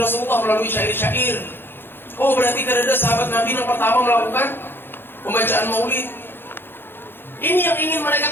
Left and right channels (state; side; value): late; right; 0.10 ms